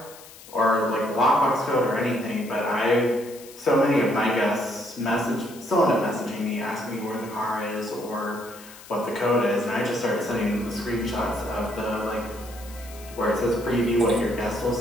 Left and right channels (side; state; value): left; noise; hiss, 19 dB below the sound